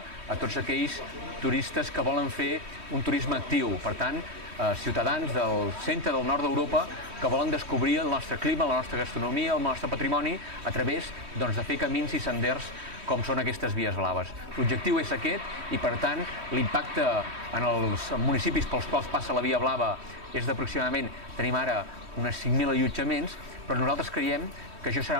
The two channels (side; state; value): left; late; 3.1 ms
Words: a tots aquells turistes que volen fer un turisme actiu. Per tant, ciutadans del centre del nord d'Europa que volen descobrir el nostre clima, la nostra gastronomia, el nostre patrimoni a través de fer camins i senders com són aquestes vies blaves. L'objectiu és aquest i, per tant, l'impacte en els municipis pels quals passa la via blava és d'aproximadament, tenim ara unes 5.000 allotjaments, però nosaltres creiem que això